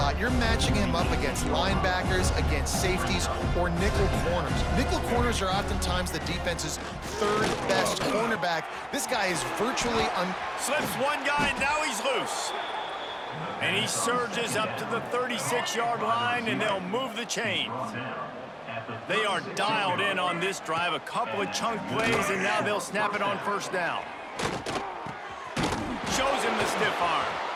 You're matching him up against linebackers, against safeties, or nickel corners. Nickel corners are oftentimes the defense's third best cornerback. This guy is virtually Slips one guy, and now he's loose. And he surges up to the 36-yard line, and they'll move the chain. They are dialed in on this drive. A couple of chunk plays, and now they'll snap it on first down. Shows him the stiff arm.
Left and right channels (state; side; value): identical; both; correlation 1.00